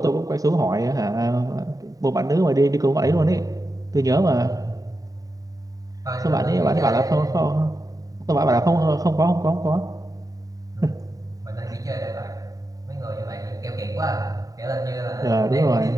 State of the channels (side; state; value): left; late; 0.17 ms